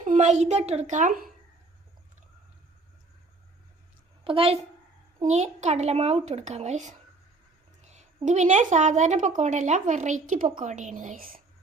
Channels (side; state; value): left; quieter; 3.5 dB